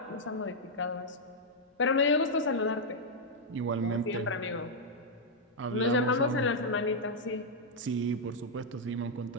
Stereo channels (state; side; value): normal; both; correlation -0.03